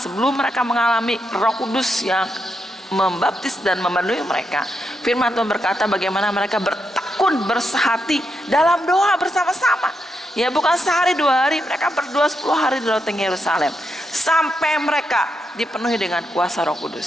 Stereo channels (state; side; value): normal; both; correlation 0.83